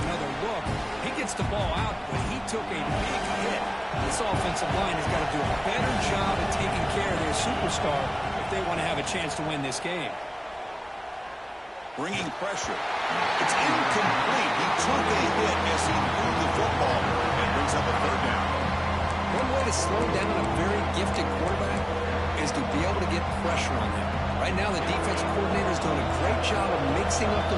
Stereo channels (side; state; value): both; identical; correlation 1.00